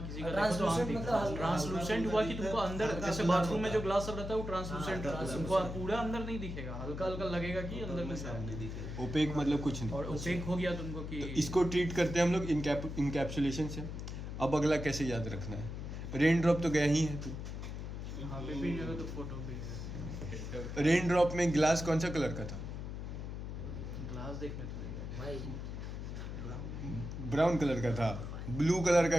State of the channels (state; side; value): noise; left; hum, 6 dB below the sound